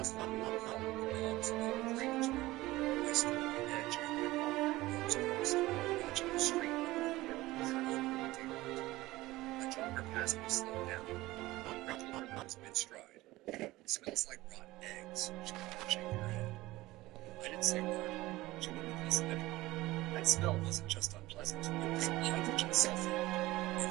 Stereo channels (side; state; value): left; quieter; 18.6 dB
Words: have been a hollow belongs to the drainage room. I stood at the edge of the Rose Crest, watching the street a jogger passed me slowed down. Wrinkled her nose mid-stride. Smells like rotten eggs. She couldn't shake her head. I didn't say a word. She wouldn't listen anyway. That smell wasn't just unpleasant. It was hydrogen sulfide. In